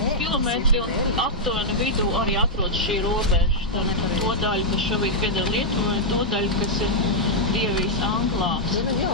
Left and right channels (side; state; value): both; normal; correlation -0.06